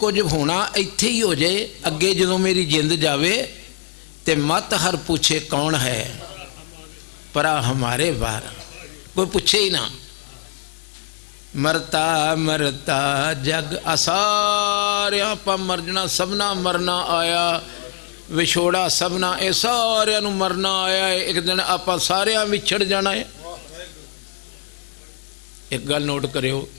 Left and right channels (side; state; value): right; silent; digital silence